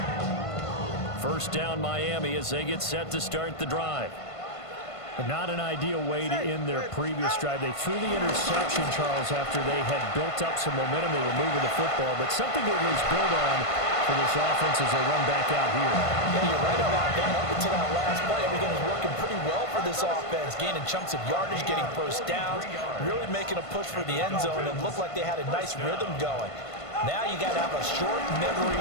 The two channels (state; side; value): late; right; 1.5 ms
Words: First down Miami as they get set to start the drive. But not an ideal way to end their previous drive. They threw the interception, Charles, after they had built up some momentum. They were moving the football, but something to at least build on for this offense as they run back out here. Yeah, you're right about that. Up until that last play, everything was working pretty well for this offense, gaining chunks of yardage, getting first downs, really making a push for the end zone, and looked like they had a nice rhythm going. Now you got to have a short memory